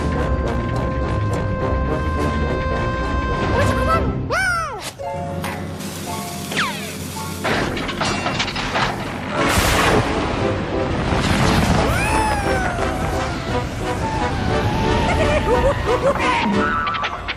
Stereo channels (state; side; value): identical; both; correlation 1.00